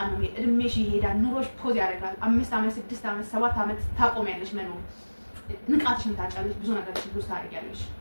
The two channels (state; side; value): inverted; both; correlation -1.00